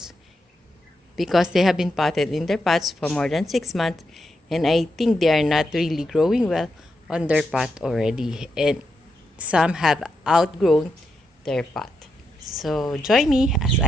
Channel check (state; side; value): normal; both; correlation 0.84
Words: because they have been potted in their pots for more than 6 months, and I think they are not really growing well on their pot already, and some have outgrown their pot. So join me as